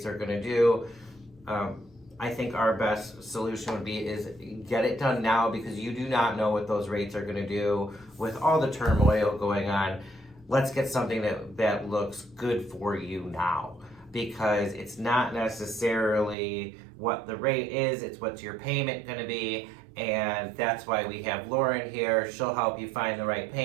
are going to do, I think our best solution would be is get it done now, because you do not know what those rates are going to do with all the turmoil going on. Let's get something that looks good for you now, because it's not necessarily what the rate is, it's what's your payment going to be. And that's why we have Lauren here. She'll help you find the right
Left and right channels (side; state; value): left; drops out; at 16.4 s